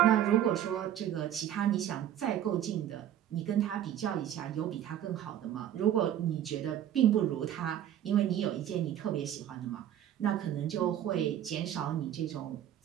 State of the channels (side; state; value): left; quieter; 11.1 dB